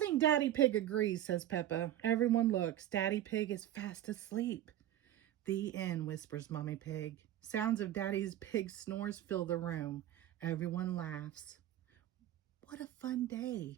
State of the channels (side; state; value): left; quieter; 12.4 dB